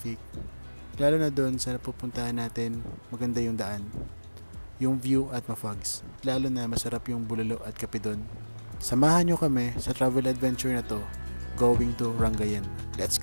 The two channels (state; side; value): inverted; both; correlation -1.00